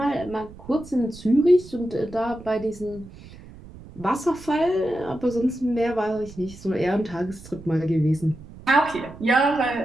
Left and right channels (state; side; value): noise; right; rumble, 18 dB below the sound